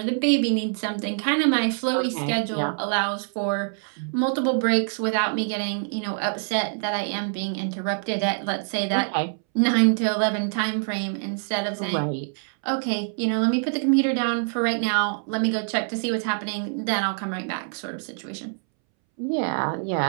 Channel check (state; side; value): silent; left; 62 dB below the other